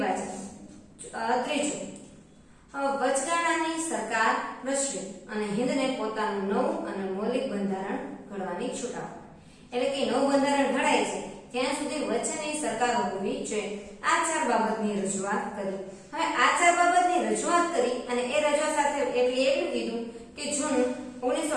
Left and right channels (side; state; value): both; identical; correlation 1.00